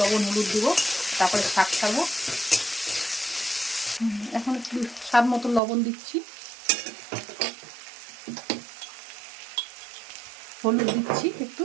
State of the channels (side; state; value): left; drops out; at 5.6 s